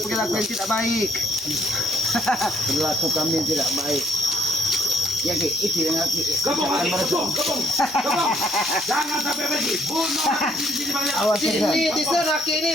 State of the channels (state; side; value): normal; both; correlation 0.66